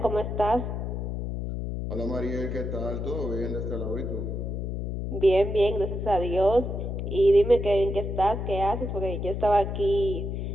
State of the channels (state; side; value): noise; left; hum, 3 dB below the sound